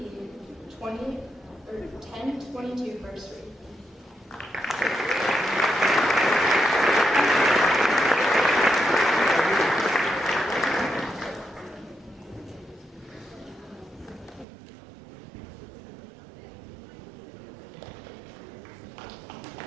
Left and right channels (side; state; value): left; drops out; at 14.5 s